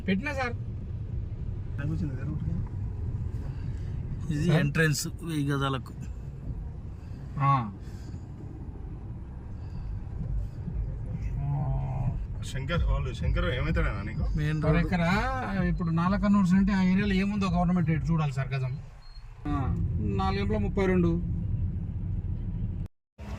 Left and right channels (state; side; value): identical; both; correlation 1.00